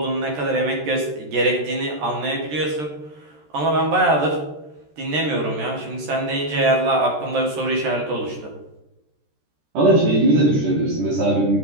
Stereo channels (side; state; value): left; late; 13 ms